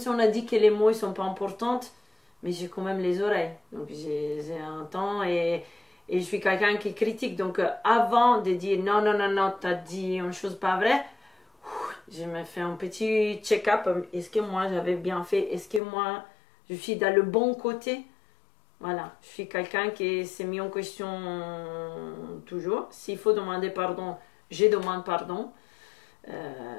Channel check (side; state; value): right; drops out; at 15.8 s